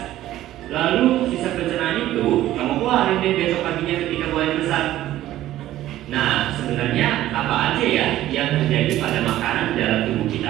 Lalu sisa pencernaan itu kamu keluarin deh besok paginya ketika buang besar. Nah, sebenarnya apa aja ya yang terjadi pada makanan dalam tubuh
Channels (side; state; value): left; quieter; 14.1 dB